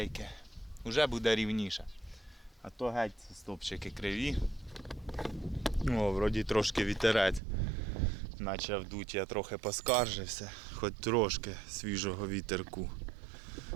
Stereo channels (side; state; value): left; drops out; at 7.4 s